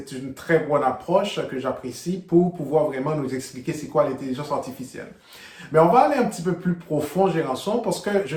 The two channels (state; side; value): identical; both; correlation 1.00